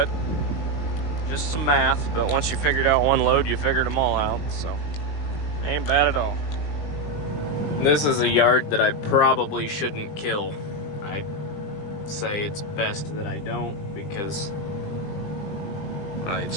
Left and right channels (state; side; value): late; right; 20 ms